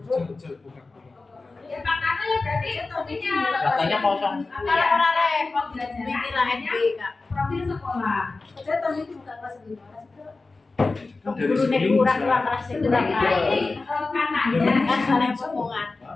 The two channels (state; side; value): quieter; right; 3.6 dB